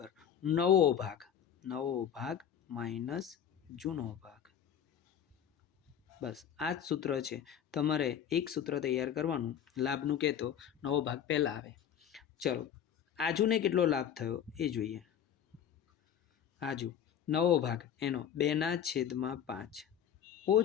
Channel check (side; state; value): right; quieter; 9.2 dB